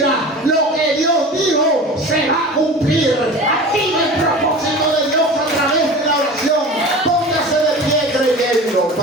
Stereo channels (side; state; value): both; normal; correlation 0.36